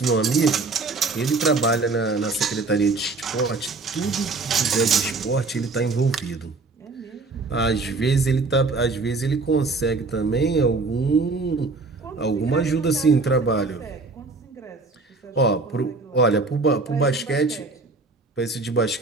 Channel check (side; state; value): left; quieter; 3.7 dB